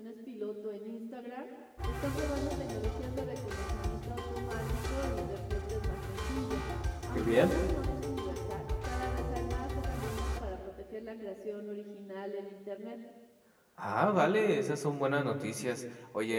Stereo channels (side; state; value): both; identical; correlation 1.00